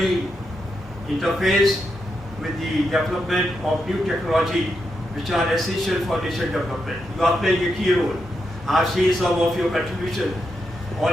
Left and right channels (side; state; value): both; normal; correlation 0.84